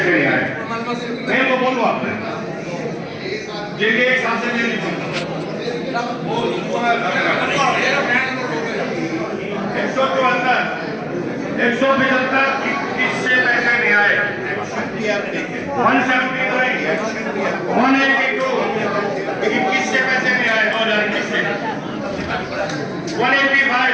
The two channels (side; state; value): both; identical; correlation 1.00